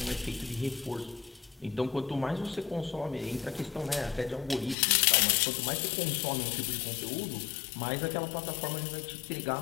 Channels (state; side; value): drops out; right; at 4.8 s